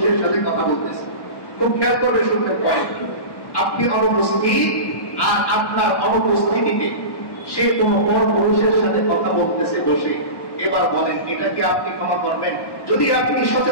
সাথে কথা বলতেছে, খুব খেয়াল করবে, শুনতে পারেন, আপনি অনুপস্থিত আর আপনার অনুপস্থিতিতে সে কোনো বড় পুরুষের সাথে কথা বলতেছে বসে, এবার বলেন এটা কি আপনি ক্ষমা করবেন? যদি আপনি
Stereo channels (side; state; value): right; late; 1.1 ms